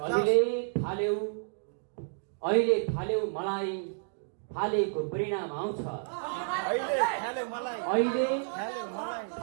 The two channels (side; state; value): left; silent; digital silence